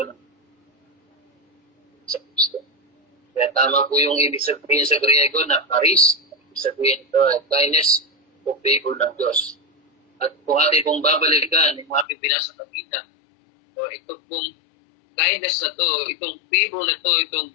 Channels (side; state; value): right; drops out; at 12.1 s